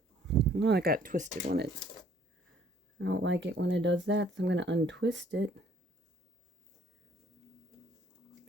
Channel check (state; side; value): normal; both; correlation 0.61